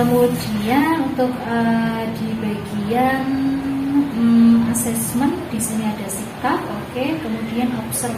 Kemudian untuk di bagian asesmen di sini ada sikap, oke. Kemudian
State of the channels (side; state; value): both; identical; correlation 1.00